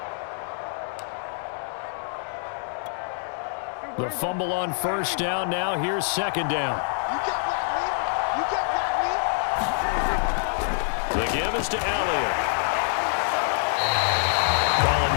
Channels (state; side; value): silent; right; digital silence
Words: The fumble on first down. Now here's second down. The give is to Elliott. Calling